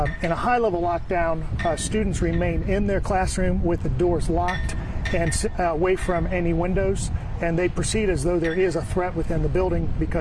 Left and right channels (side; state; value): both; identical; correlation 1.00